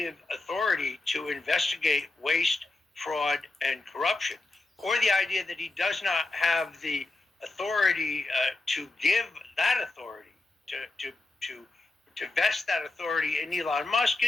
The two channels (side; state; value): right; quieter; 3.1 dB